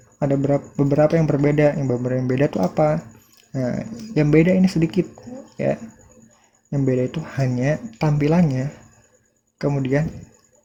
ada beberapa yang berbeda. Yang beberapa yang beda itu apa? Nah, yang beda ini sedikit ya. Yang beda itu hanya tampilannya. Kemudian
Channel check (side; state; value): both; identical; correlation 1.00